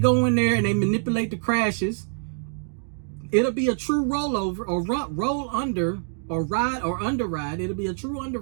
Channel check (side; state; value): left; silent; digital silence